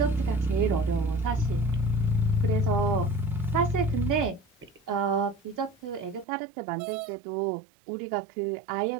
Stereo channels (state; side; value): drops out; left; at 6.2 s